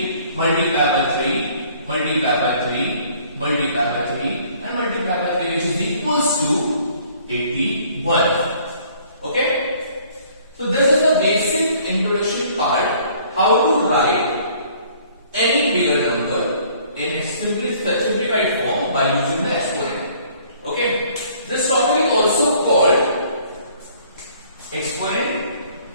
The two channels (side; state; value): both; inverted; correlation -0.57